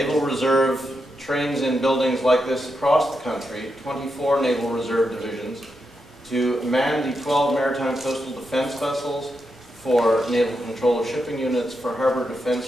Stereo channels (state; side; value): normal; both; correlation 0.85